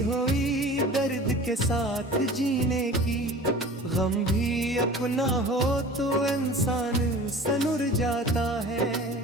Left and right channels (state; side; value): normal; both; correlation 0.40